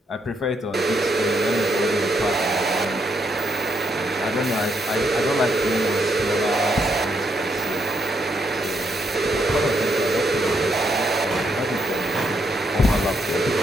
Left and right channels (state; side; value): normal; both; correlation 0.77